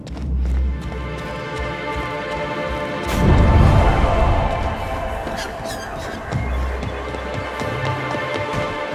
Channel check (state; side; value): identical; both; correlation 1.00